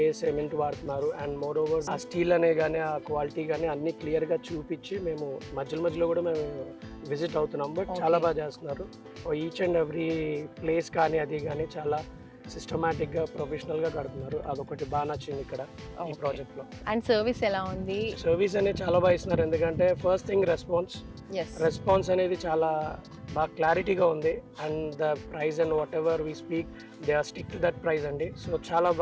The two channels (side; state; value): both; identical; correlation 1.00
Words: సిమెంట్ వాడుతున్నారు, అండ్ మోర్ ఓవర్ ఆ స్టీల్ అనే కానీ ఆ క్వాలిటీ కానీ అన్ని క్లియర్ గా చూపించి మేము మధ్యలో కూడా మేము విజిట్ అవుతున్నాం. బట్ చాలా బాగా చేస్తున్నారు. ఈచ్ అండ్ ఎవ్రీ ప్లేస్ కానీ అది కానీ చాలా సిస్టమాటిక్ గా ప్రొఫెషనల్ గా కడుతున్నారు. అదొకటి బాగా నచ్చింది ఇక్కడ ఈ ప్రాజెక్ట్ లో. అండ్ సర్వీస్ ఎలా ఉంది? సర్వీస్ అనేది చాలా బాగా ఇస్తున్నారు. ఎందుకంటే ఫస్ట్ థింగ్ రెస్పాన్స్ అనేది చాలా బాగా క్లారిటీగా ఉంది. And the price and whatever we speak they are stick to that price అండి. సో చాలా